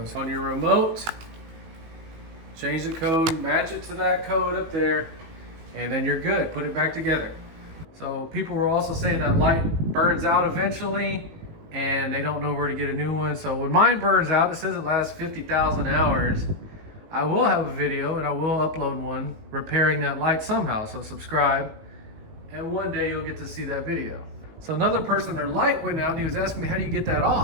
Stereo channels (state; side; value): late; left; 18 ms